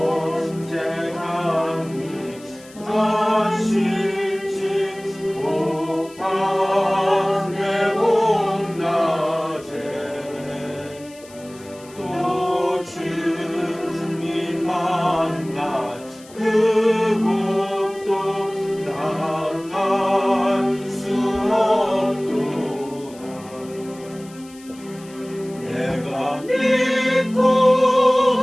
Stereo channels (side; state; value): left; noise; hiss, 23 dB below the sound